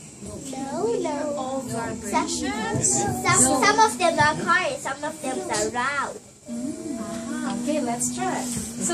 No. All vibrations. Some of them are quiet, some of them are loud. Okay, let's try.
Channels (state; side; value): identical; both; correlation 1.00